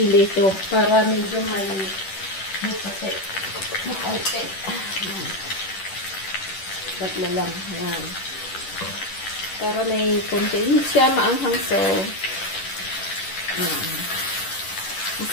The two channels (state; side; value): late; right; 10 ms